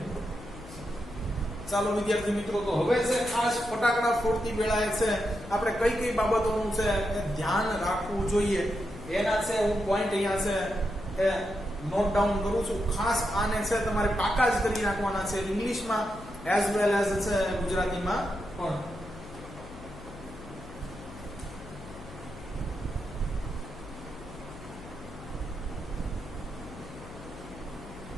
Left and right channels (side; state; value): left; noise; hum, 16 dB below the sound